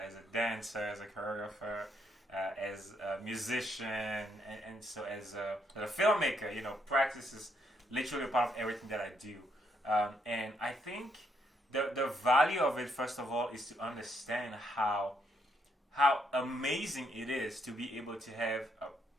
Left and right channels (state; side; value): normal; both; correlation 0.74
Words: dancer, as a choreographer, as a musician, and so as a filmmaker. Practice is literally a part of everything that I do. And I think the value of it, first of all, is to understand how amazing it is to be able to have a